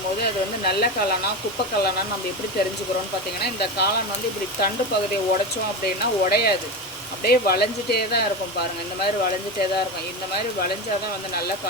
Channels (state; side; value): normal; both; correlation 0.20